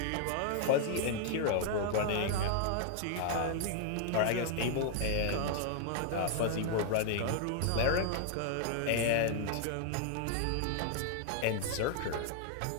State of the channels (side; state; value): both; different; correlation 0.00